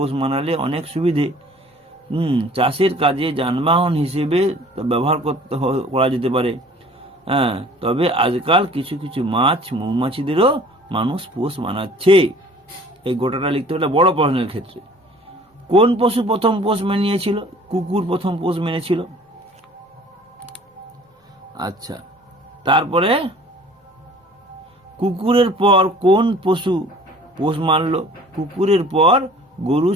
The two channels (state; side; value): normal; both; correlation 0.50